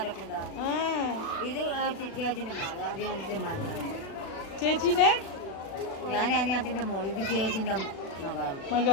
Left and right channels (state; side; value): late; right; 36 ms